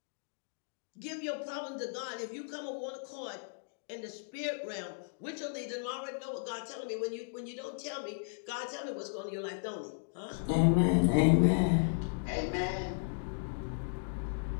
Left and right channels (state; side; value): silent; right; digital silence